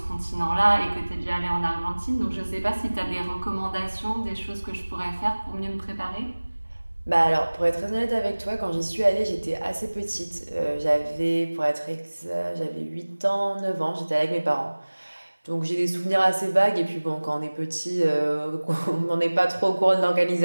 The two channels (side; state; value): both; inverted; correlation -1.00